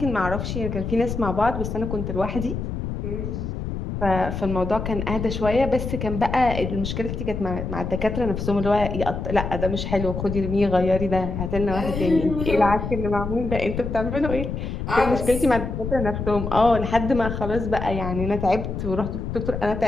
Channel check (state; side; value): noise; left; rumble, 4 dB below the sound